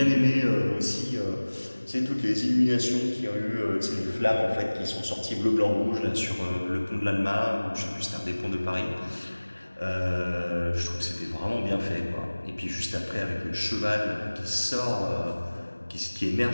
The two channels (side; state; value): both; inverted; correlation -1.00